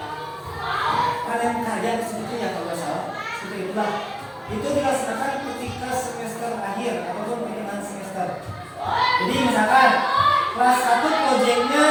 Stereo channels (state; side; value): identical; both; correlation 1.00